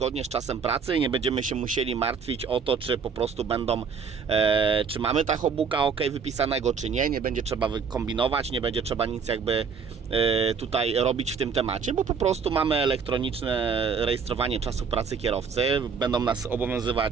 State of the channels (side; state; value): left; quieter; 5.9 dB